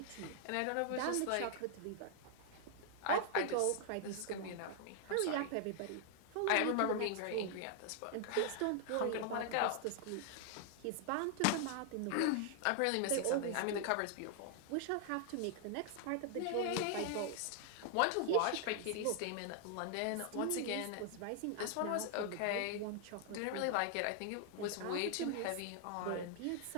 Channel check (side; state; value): both; different; correlation 0.00